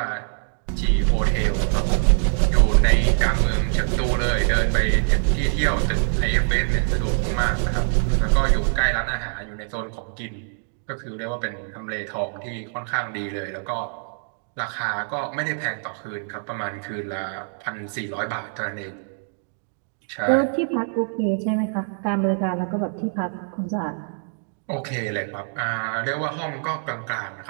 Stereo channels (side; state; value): left; silent; digital silence